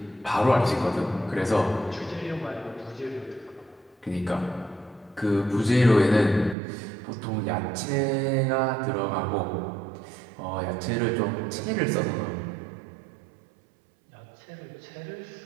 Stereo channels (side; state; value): left; drops out; at 6.6 s